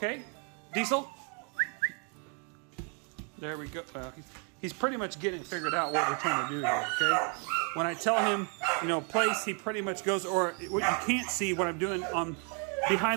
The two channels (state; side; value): quieter; left; 38.3 dB